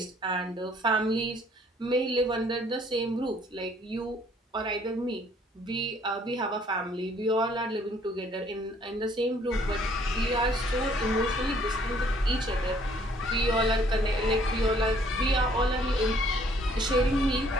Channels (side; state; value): both; normal; correlation 0.61